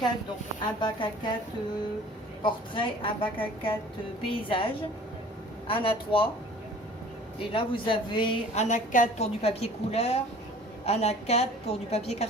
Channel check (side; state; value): both; normal; correlation 0.48